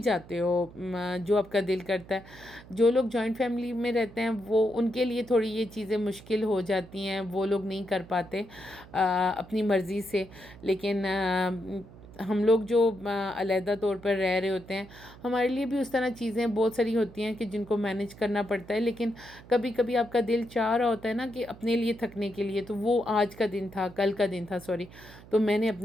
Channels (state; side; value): noise; right; hum, 20 dB below the sound